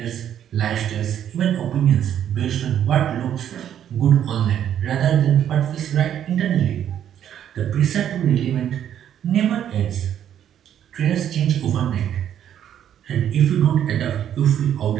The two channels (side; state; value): left; quieter; 10.0 dB